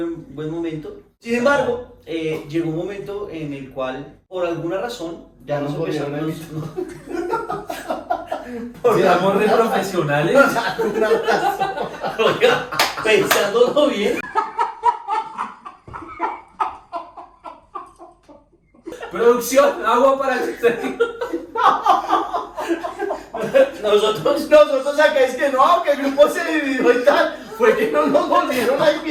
buen momento. Sin embargo, llegó un momento en el cual, por alguna razón, ya nos volvieron a empezamos. Éramos re profesionales. Oiga, pensándolo bien. Producción, agua para que Nosotros acá es que no, que el grupo se dividió y tal. Fue que no nos volvieron a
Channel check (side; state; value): both; identical; correlation 1.00